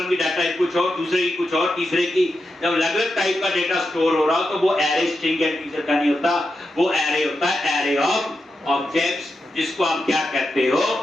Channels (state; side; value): normal; both; correlation 0.88